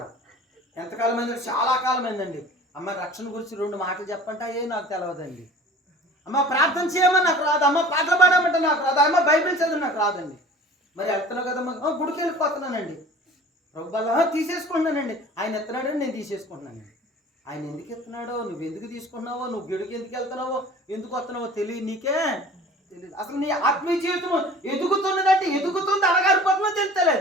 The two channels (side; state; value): both; normal; correlation 0.44